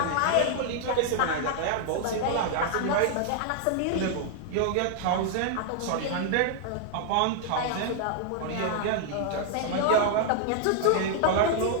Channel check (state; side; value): different; both; correlation -0.01